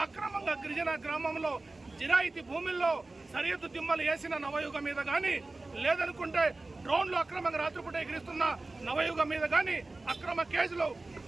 అక్రమంగా గిరిజన గ్రామంలో జిరాయితీ భూముల్లో సరిహద్దు దిమ్మలు వేసిన నవయుగ మీద కానీ, లేదనుకుంటే డ్రోన్లు అక్రమంగా రాత్రిపూట ఎగిరిస్తున్న నవయుగ మీద కానీ అక్రమ కేసులు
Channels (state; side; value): quieter; left; 3.2 dB